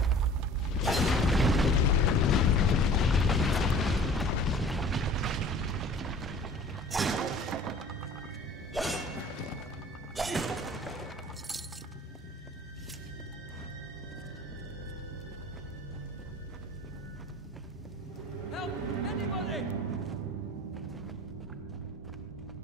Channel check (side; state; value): both; normal; correlation 0.46